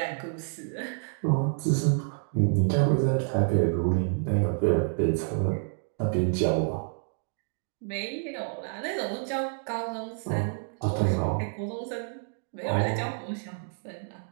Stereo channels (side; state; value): left; silent; 59 dB below the other